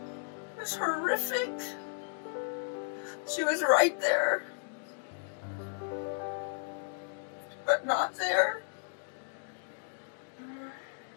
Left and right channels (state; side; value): silent; right; digital silence